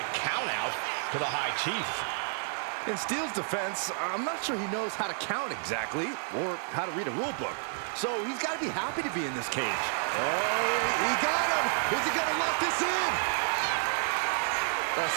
countout to the High Chief. In Steel's defense, I'm not sure he knows how to count exactly or how to read a rule book. So he's got to be happy to be in this cage. Oh, he got him. Is he going to lock this in? A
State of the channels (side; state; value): left; silent; 58 dB below the other